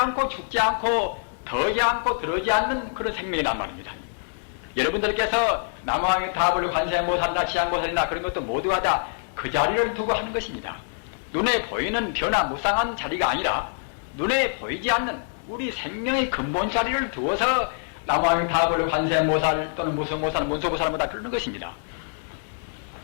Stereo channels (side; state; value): right; silent; digital silence